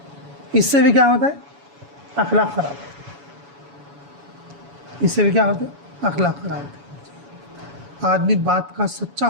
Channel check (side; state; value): left; late; 7.1 ms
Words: इससे भी क्या होता है? अखलाक खराब। इससे भी क्या होता है? अखलाक खराब होते हैं। आदमी बात का सच्चा